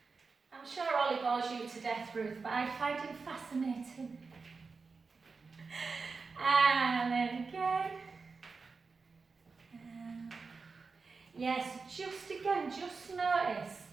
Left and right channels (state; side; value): quieter; left; 4.5 dB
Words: I'm sure Ollie bores you to death, Ruth, but I find him fascinating. And then again. Yes, just again, just notice